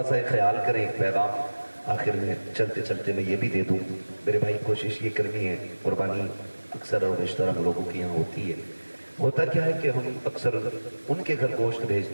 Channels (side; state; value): both; inverted; correlation -1.00